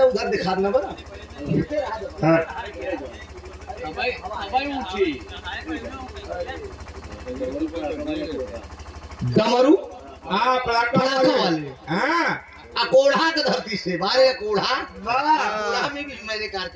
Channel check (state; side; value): identical; both; correlation 1.00